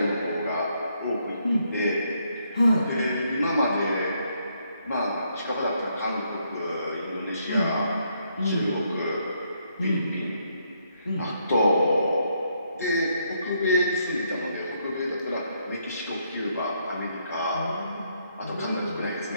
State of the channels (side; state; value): both; inverted; correlation -0.74